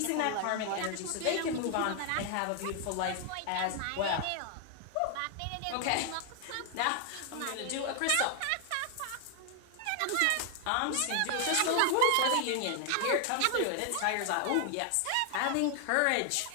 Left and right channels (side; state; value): both; different; correlation 0.00